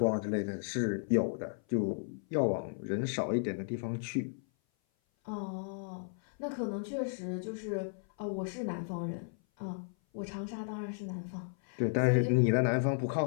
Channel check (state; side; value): silent; right; 55 dB below the other